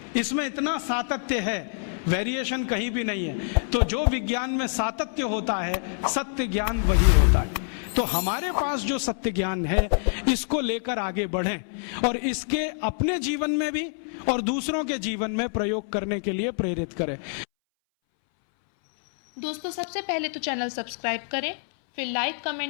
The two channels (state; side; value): silent; right; 61 dB below the other